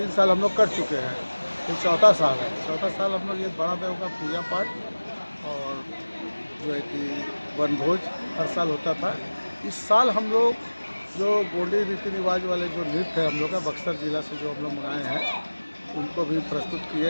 साल हम लोग कर चुके हैं, ये चौथा साल है। चौथा साल हम लोग ये बड़ा देव का पूजा पाठ और जो है कि वनभोज हर साल होता था। इस साल हम लोग जो गोंडी रीति रिवाज वाले जो नृत्य है हम लोग का बक्सर जिला से जो हम लोग मंगाए हैं उनको भी प्रस्तुत किए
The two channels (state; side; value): inverted; both; correlation -1.00